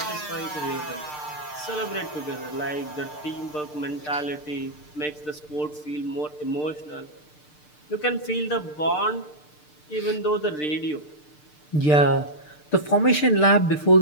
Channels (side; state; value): right; late; 6.7 ms